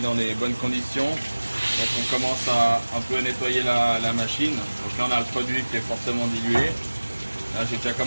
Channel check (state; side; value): inverted; both; correlation -1.00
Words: les bonnes conditions, donc on commence à un peu nettoyer la machine. Donc là on a le produit qui est fortement dilué. Là j'ai déjà